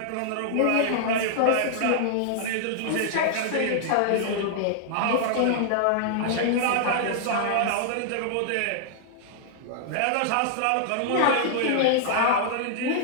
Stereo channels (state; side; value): different; both; correlation -0.01